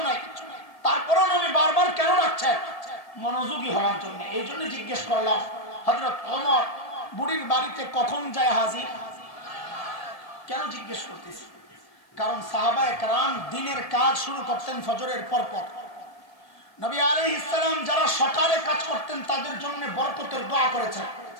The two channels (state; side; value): late; right; 1.8 ms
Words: নাই। তারপরেও নবী বারবার কেন ডাকছেন? মনোযোগী হওয়ার জন্য। এই জন্য জিজ্ঞেস করলাম, হযরত ওমর বুড়ির বাড়িতে কখন যায় হাজির? কেন জিজ্ঞেস করতেছি? কারণ সাহাবায়ে কেরাম দিনের কাজ শুরু করতেন ফজরের পর পর। নবী আলাইহিস সালাম যারা সকালে কাজ করতেন তাদের জন্য বরকতের দোয়া করেছেন।